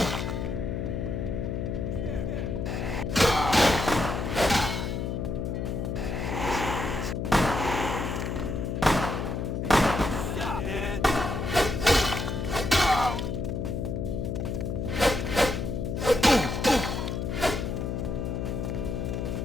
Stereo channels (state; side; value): noise; left; hum, 2 dB below the sound